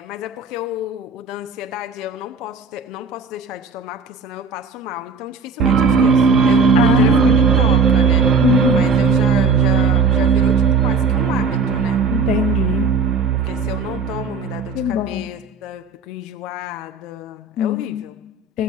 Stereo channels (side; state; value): left; quieter; 4.1 dB